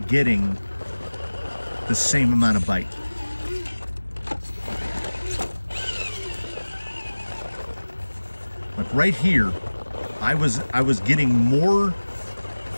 getting the same amount of bite. Like right here, I was getting more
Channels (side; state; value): both; inverted; correlation -1.00